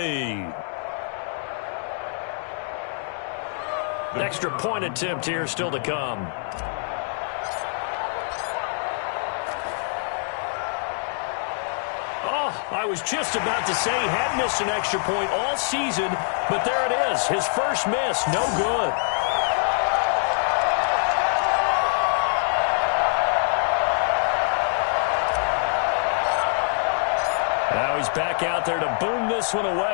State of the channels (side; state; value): right; silent; digital silence